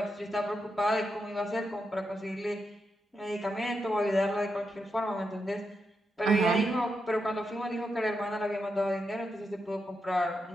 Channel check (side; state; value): both; normal; correlation 0.85